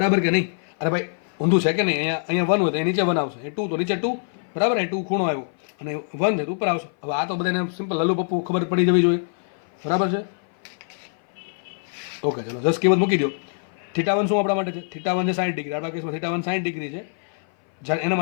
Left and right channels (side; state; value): right; silent; 57 dB below the other